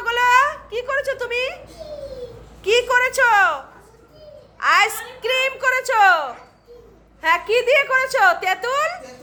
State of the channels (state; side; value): identical; both; correlation 1.00